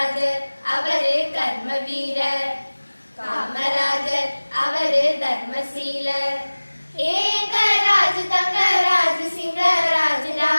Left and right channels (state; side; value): inverted; both; correlation -1.00